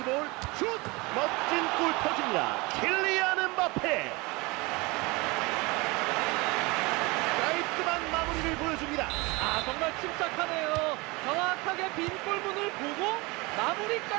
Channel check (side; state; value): left; quieter; 24.9 dB